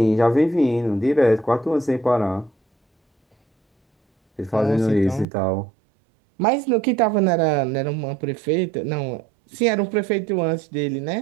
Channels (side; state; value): left; drops out; at 5.2 s